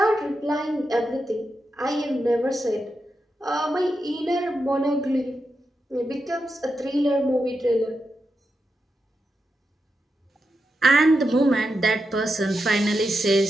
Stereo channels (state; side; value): normal; both; correlation 0.87